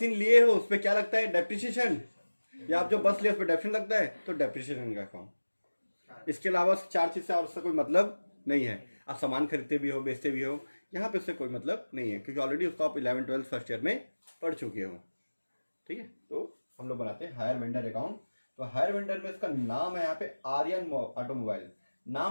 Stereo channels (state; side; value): inverted; both; correlation -1.00